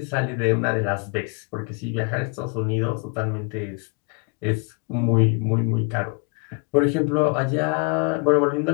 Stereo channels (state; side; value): quieter; right; 33.8 dB